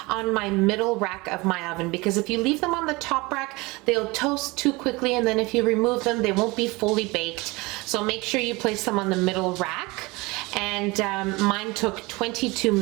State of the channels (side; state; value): left; quieter; 23.7 dB